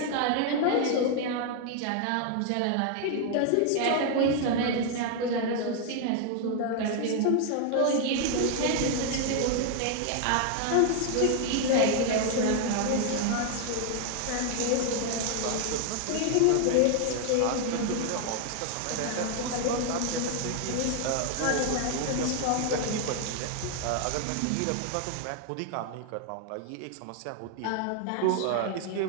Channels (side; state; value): both; different; correlation 0.00